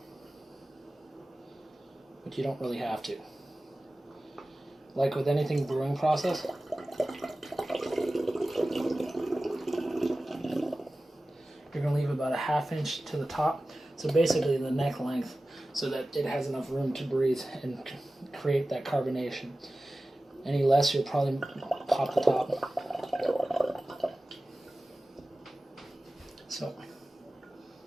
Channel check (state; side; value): normal; both; correlation 0.96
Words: but you don't really have to. Like with anything brewing process, you're going to leave about a ½ inch to the top, so basically the neck length, so that it has enough room to breathe and create that carbonation. Any less, you'll probably pop the top. So,